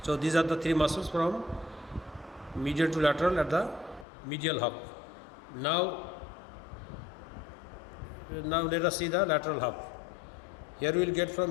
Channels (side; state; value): right; drops out; at 4.0 s